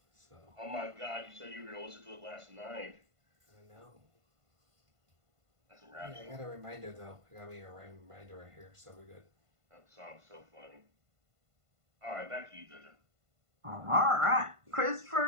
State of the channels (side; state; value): left; late; 1.5 ms